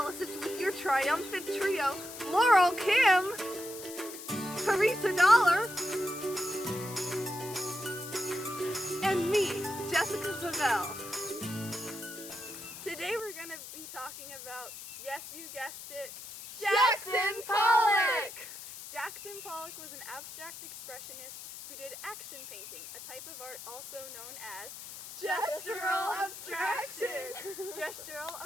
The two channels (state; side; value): noise; left; hiss, 12 dB below the sound